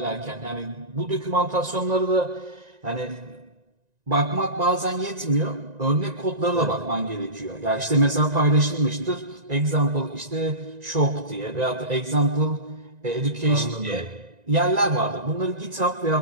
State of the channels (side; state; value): left; late; 1.9 ms